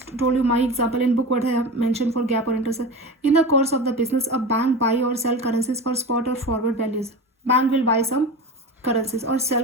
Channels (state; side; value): normal; both; correlation 0.28